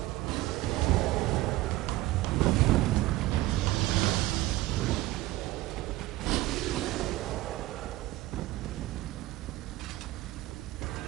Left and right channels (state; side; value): quieter; left; 17.4 dB